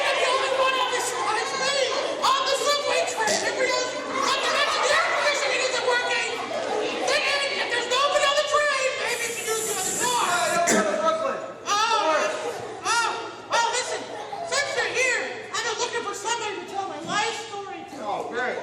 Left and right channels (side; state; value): both; identical; correlation 1.00